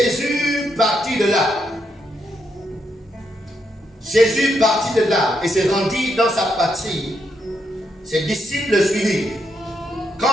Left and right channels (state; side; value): normal; both; correlation 0.79